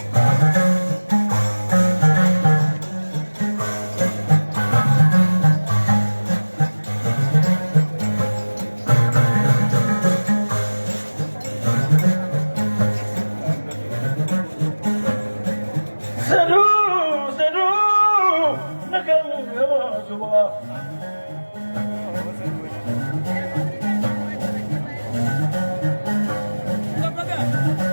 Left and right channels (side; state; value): both; inverted; correlation -1.00